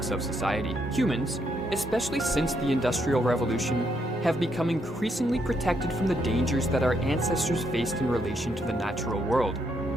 of society. Humans, especially since the Industrial Revolution, have become increasingly protected from the dangers that our ancestors faced in relation to the natural world.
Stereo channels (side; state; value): both; normal; correlation 0.76